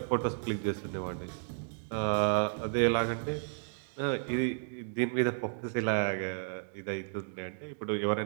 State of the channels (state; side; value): silent; left; digital silence